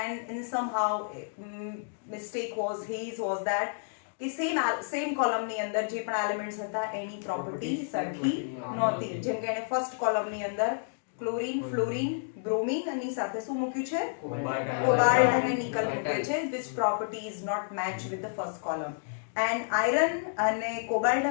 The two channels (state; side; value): silent; right; digital silence